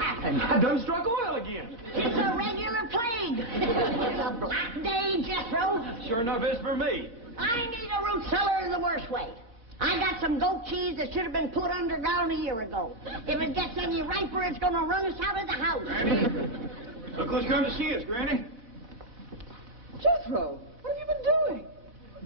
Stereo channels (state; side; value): late; left; 4.2 ms